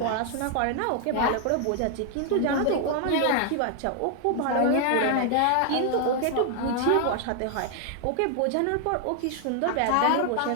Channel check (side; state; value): both; different; correlation 0.00